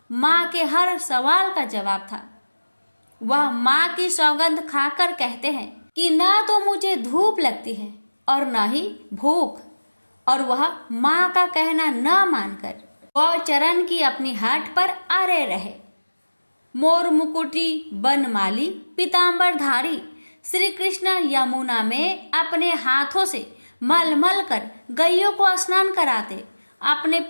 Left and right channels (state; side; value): inverted; both; correlation -1.00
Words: माँ के हर सवाल का जवाब था। वह माँ की सौगंध खाकर कहते हैं कि ना तो मुझे धूप लगती है और न ही भूख, और वह माँ का कहना न मानकर गौचरण की अपनी हाट पर अरे रहे। मोर मुकुटी बनमाली पीताम्बरधारी श्री कृष्ण यमुना में अपने हाथों से मल कर गायों को स्नान कराते, अपने